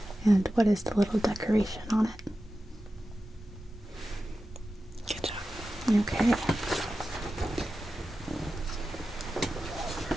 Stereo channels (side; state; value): both; normal; correlation 0.93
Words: And what is the little decoration on it? Good job. Okay.